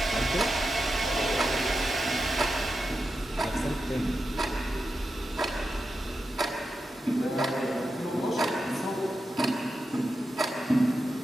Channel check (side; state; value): both; normal; correlation 0.89